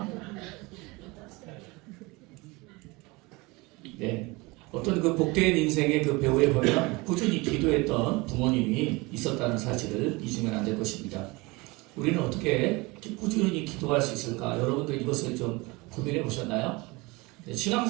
네. 어떤 그 복된 인생의 그 배우에 보면 꾸준히 기도했던 부모님이 있었다는 사실을 잊으면 안 될 것입니다. 우리는 어떻게 꾸준히 기도할 수 있을까? 여러분들 이것을 좀 고민해 보셨나요?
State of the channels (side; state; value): left; quieter; 24.4 dB